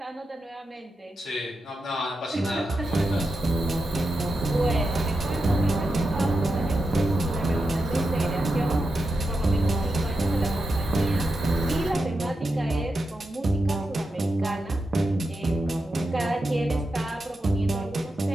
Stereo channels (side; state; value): both; normal; correlation 0.88